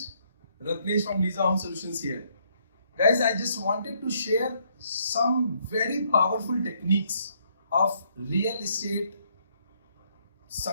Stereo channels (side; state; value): both; inverted; correlation -0.70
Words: Ratnesh from Lisa Home Solutions here. Guys, I just wanted to share some very powerful techniques of real estate